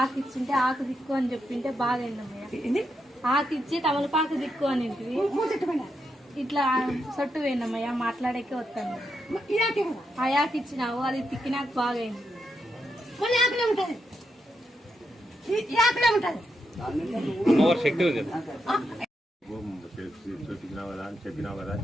ఆకు ఇచ్చింటే ఆకు దిక్కు అని చెప్పింటే బాగా అయిందమ్మయ్య. ఆకు ఇచ్చి తమలపాకు దిక్కు అని ఇట్లా సొట్టు పోయినమ్మయ్య. మాట్లాడేకే వస్తాను. ఆ యాకు ఇచ్చినావు, అది తిక్కినాక బాగా అయింది. శక్తి ఉంది. చెప్పినావు కదా అని చెప్పినా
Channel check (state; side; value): normal; both; correlation 0.83